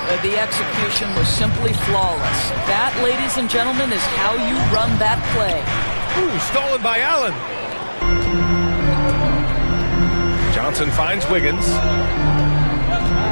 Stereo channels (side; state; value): both; inverted; correlation -1.00